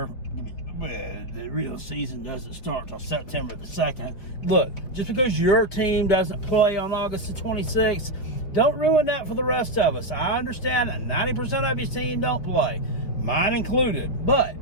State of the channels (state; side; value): late; right; 5.3 ms